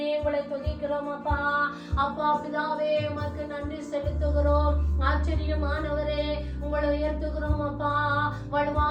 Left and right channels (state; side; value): identical; both; correlation 1.00